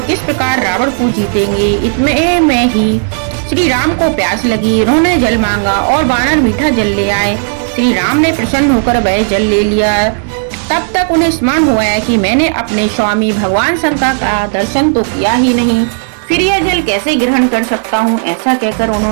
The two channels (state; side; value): silent; left; digital silence